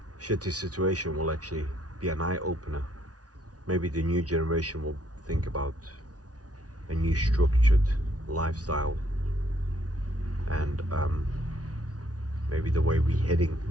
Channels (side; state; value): left; late; 0.68 ms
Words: shitty situation will actually be an eye-opener. Maybe the new generation will think about a new structured lifestyle, and maybe the way we're heading